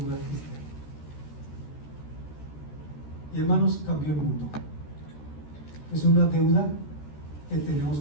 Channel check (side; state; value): right; late; 14 ms